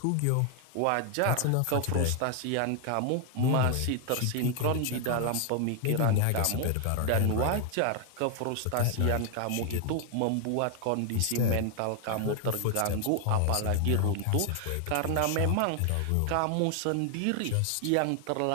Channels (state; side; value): different; both; correlation 0.00